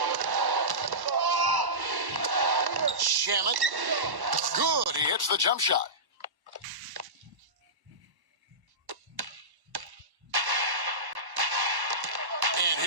Shamet. Good. He hits the jump shot. And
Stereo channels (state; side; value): late; left; 1.1 ms